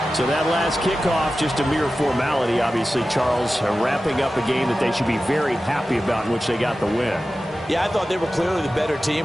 So that last kickoff, just a mere formality, obviously, Charles, wrapping up a game that they should be very happy about in which they got the win. Yeah, I thought they were clearly the better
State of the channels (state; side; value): normal; both; correlation 0.94